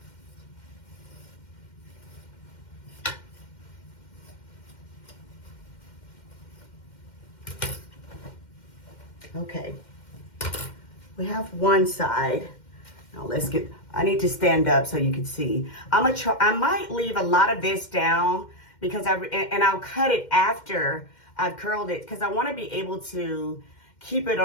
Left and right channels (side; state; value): right; late; 2.1 ms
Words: Okay, we have one side. Now let's get, I need to stand up so you can see. I might leave a lot of this down because I'll cut it after I've curled it because I want to be able to keep it